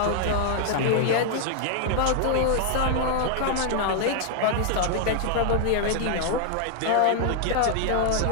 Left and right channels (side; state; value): both; different; correlation 0.00